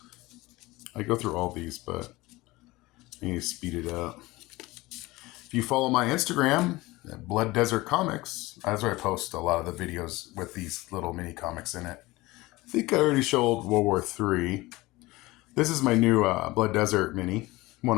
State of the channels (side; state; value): right; quieter; 20.4 dB